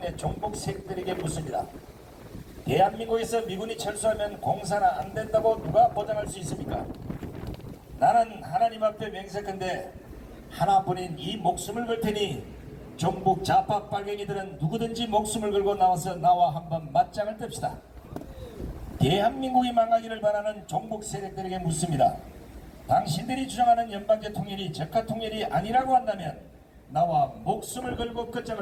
내 종북 세력들에게 묻습니다. 대한민국에서 미군이 철수하면 공사나 안 된다고 누가 보장할 수 있습니까? 나는 하나님 앞에 맹세컨대 하나뿐인 이 목숨을 걸 테니 종북 좌파 빨갱이들은 누구든지 목숨을 걸고 나와서 나와 한번 맞짱을 뜹시다. 대한민국이 망하기를 바라는 종북 세력들에게 묻습니다. 당신들이 주장하는 연방제 통일이 적화 통일이 아니라고 한다면 나와 목숨을 걸고 끝장을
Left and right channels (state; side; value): identical; both; correlation 1.00